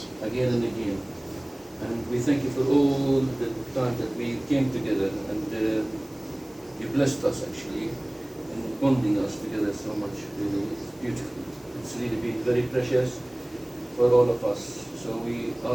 again and again. And we thank you for all the time that we came together, and you blessed us actually and bonding us together so much. Really, it's beautiful. It's really been very precious for all of us. So we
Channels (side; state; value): left; noise; hiss, 25 dB below the sound